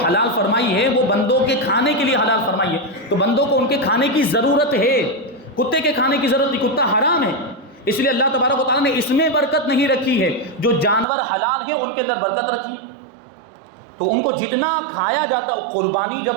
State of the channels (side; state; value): left; drops out; at 11.1 s